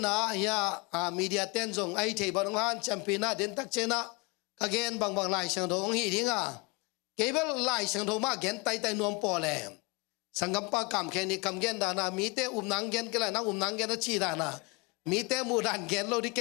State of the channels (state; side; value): quieter; right; 28.7 dB